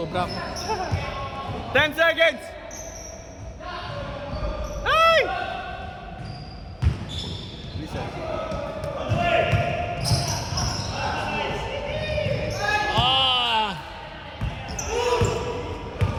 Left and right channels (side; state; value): both; identical; correlation 1.00